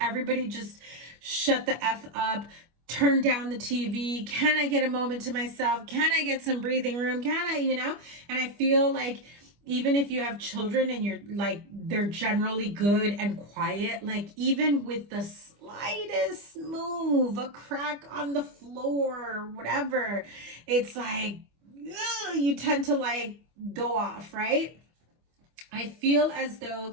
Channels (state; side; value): late; left; 25 ms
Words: everybody just shut the F up, turn down the TV. Can I get a moment to myself? Can I get some breathing room? Can I, you know? And I feel like even if you have children and you're like, they're generally good and quiet, like even with the slightest move, a crack on the floor, whatever, it's like, you tend to like go off, right? I feel as